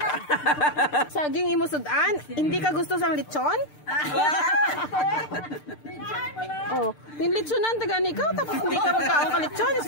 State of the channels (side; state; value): right; late; 6.7 ms